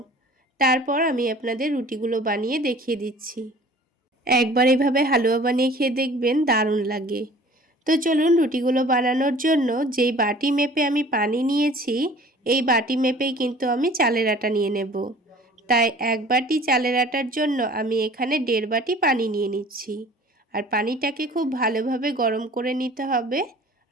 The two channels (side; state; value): both; normal; correlation 0.47